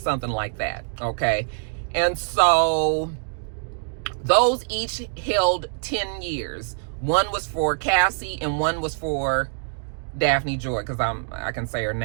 like that. Okay. And so those each held 10 years. One was for Cassie and one was for Daphne Joy, because I can say her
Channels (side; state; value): left; silent; digital silence